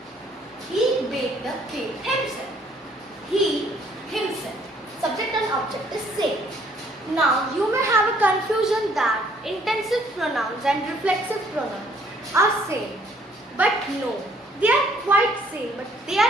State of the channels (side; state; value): both; normal; correlation 0.63